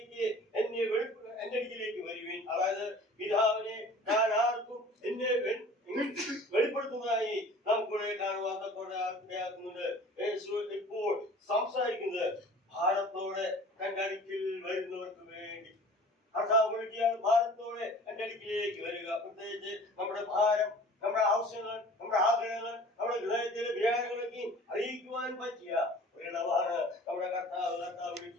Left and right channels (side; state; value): both; normal; correlation 0.45